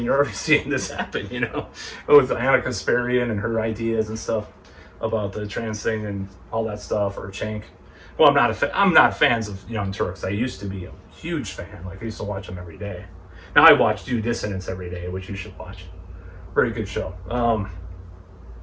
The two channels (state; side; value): identical; both; correlation 1.00